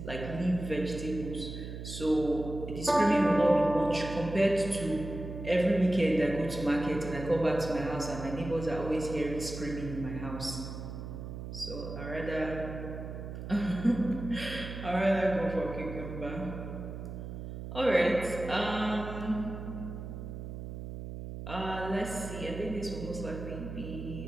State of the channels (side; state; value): right; noise; hum, 8 dB below the sound